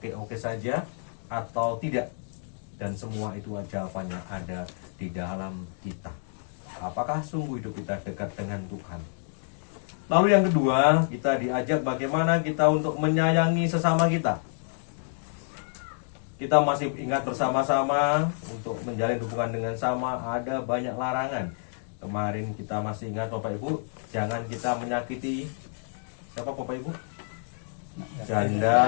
saja atau tidak? Dan semua itu jawabannya ada di dalam kita. Apakah sungguh hidup kita dekat dengan Tuhan? Lalu yang kedua, kita diajak bagaimana kita untuk menyayangi sesama kita. Kita masih ingat bersama-sama untuk menjalin hubungan dengan sama, ada banyak larangan. Kemarin kita masih ingat Bapak Ibu, jangan kita menyakiti siapa Bapak Ibu?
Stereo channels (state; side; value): silent; right; digital silence